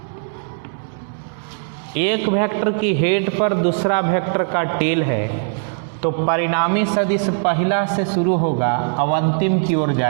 एक वेक्टर की हेड पर दूसरा वेक्टर का टेल है, तो परिणामी सदिश पहला से शुरू होगा और अंतिम की ओर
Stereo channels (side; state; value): left; silent; digital silence